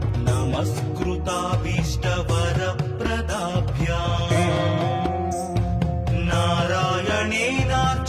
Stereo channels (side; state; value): both; identical; correlation 1.00